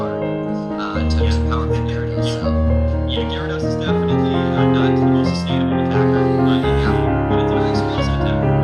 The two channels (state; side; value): identical; both; correlation 1.00